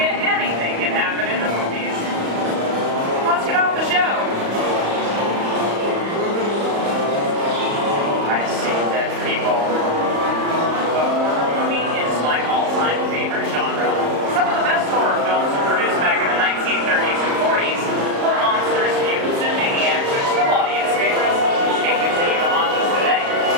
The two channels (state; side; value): late; left; 35 ms